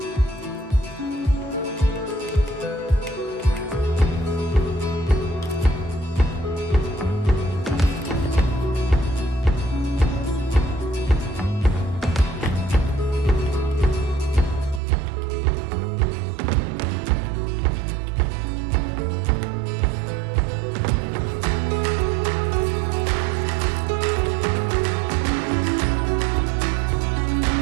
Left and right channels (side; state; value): left; drops out; at 14.8 s